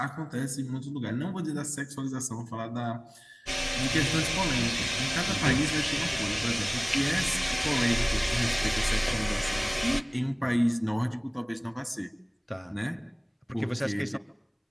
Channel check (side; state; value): both; identical; correlation 1.00